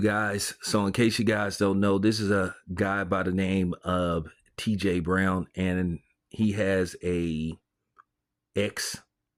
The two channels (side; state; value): both; identical; correlation 1.00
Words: guys. So in case you guys don't know, this is a guy by the name of TJ Brown, and he has a X.